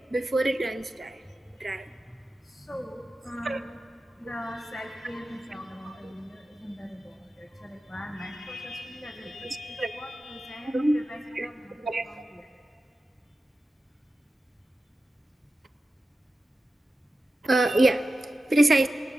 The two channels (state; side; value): normal; both; correlation 0.93